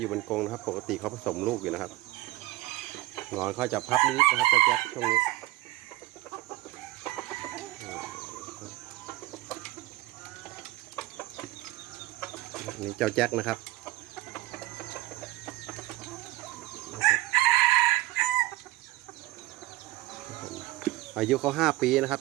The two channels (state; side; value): quieter; left; 17.9 dB